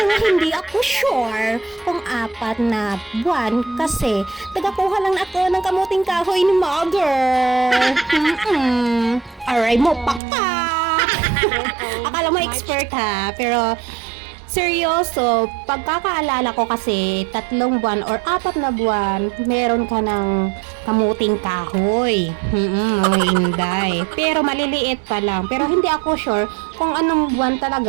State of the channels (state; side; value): drops out; left; at 10.2 s